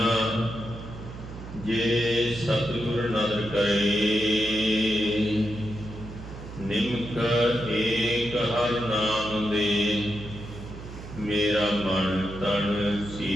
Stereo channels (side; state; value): right; noise; hum, 12 dB below the sound